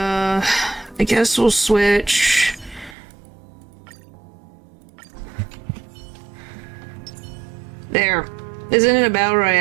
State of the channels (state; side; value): drops out; left; at 3.0 s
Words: guess we'll switch. There. Isn't it a battle